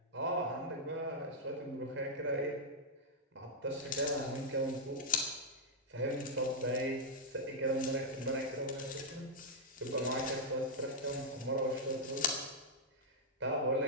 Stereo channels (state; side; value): normal; both; correlation -0.05